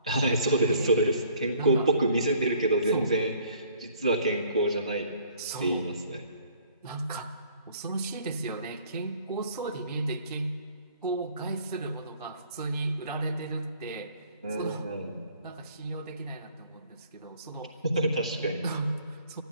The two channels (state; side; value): inverted; both; correlation -0.57